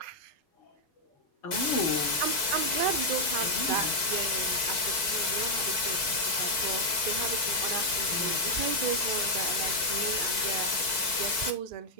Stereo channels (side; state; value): right; late; 4.5 ms